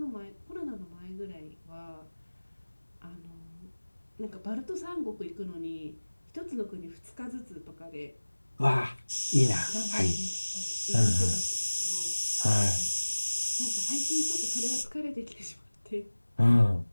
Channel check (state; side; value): inverted; both; correlation -1.00